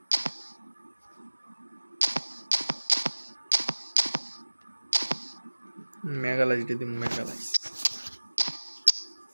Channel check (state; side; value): inverted; both; correlation -1.00